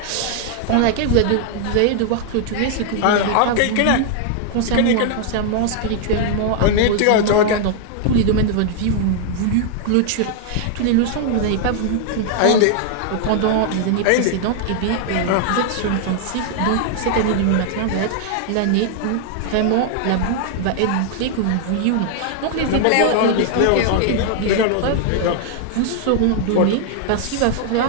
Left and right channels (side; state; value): both; different; correlation 0.00